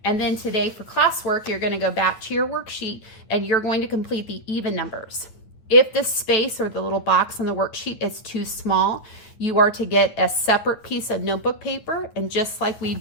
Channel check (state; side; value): late; right; 9.3 ms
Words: And then today for classwork, you're going to go back to your worksheet and you're going to complete the even numbers. If the space or the little box on the worksheet is too small, you are to get a separate piece of notebook paper, and just like we